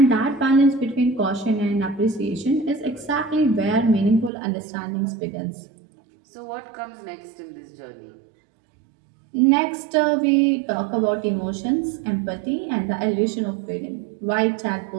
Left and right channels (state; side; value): drops out; left; at 4.3 s